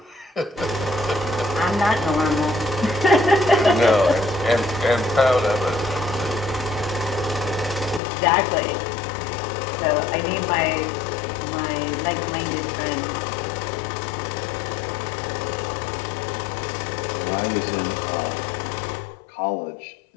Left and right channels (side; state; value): right; drops out; at 8.0 s